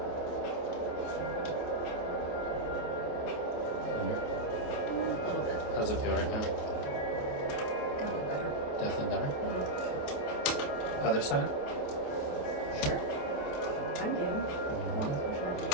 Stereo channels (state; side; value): late; right; 28 ms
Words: Under. A little bit. How's it feel right now? Definitely better. Definitely better. Mhm. Other side? Sure. I'm game. Oh, especially after